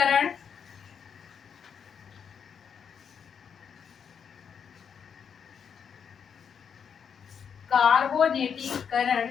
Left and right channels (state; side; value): quieter; right; 7.2 dB